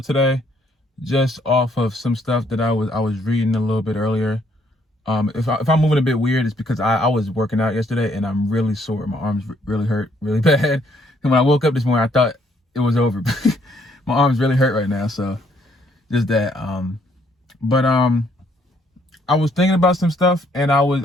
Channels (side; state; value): both; normal; correlation 0.68